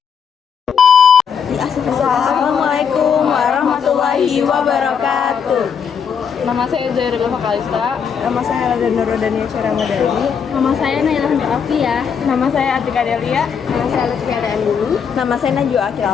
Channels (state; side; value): quieter; right; 6.9 dB